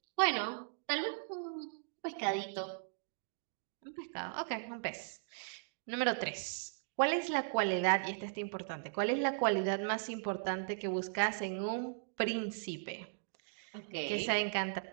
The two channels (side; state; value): left; silent; digital silence